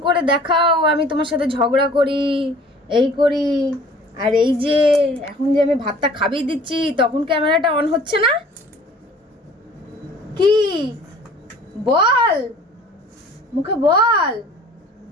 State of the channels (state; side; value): normal; both; correlation 0.50